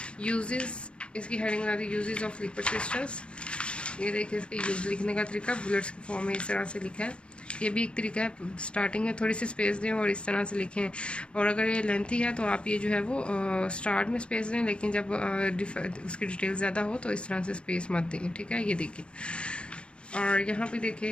यूजेस, इसकी हेडिंग बना the uses of liquid crystals. ये देखिए इसके यूज लिखने का तरीका बुलेट्स के फॉर्म में इस तरह से लिखा है, ये भी एक तरीका है। स्टार्टिंग में थोड़ी सी स्पेस दें और इस तरह से लिखें, और अगर ये लेंथी है तो आप ये जो है वो स्टार्ट में स्पेस दें, लेकिन जब उसकी डिटेल ज़्यादा हो तो इस तरह से स्पेस मत दें, ठीक है। ये देखिए, और यहाँ पे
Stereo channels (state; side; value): late; right; 0.058 ms